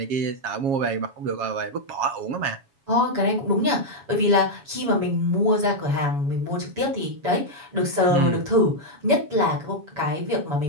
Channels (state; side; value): late; left; 7.1 ms